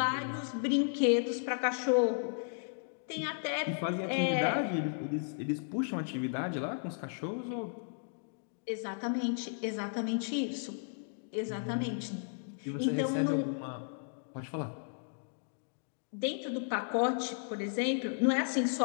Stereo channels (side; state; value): right; silent; digital silence